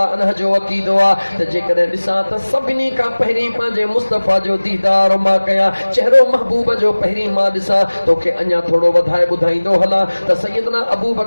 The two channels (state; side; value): inverted; both; correlation -1.00